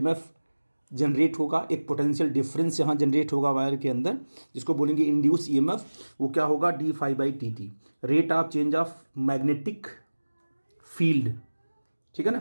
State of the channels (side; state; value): both; inverted; correlation -1.00